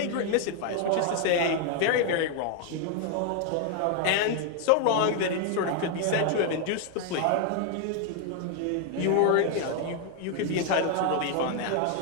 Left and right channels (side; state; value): both; different; correlation 0.00